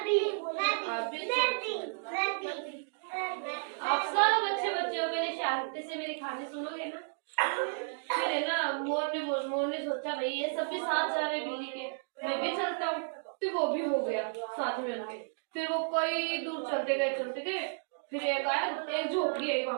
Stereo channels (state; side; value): silent; left; digital silence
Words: आप सब अच्छे बच्चे हो। पहले शांति से मेरी कहानी सुनोगे ना? फिर है ना, मोर ने सोचा भाई ये सब भी साथ जा रहे बिल्ली के, मैं भी चलता हूँ। फिर वो भी हो गया साथ में उनके। फिर वो कई दूर चलते गए। फिर एक आया, एक झोपड़ी आई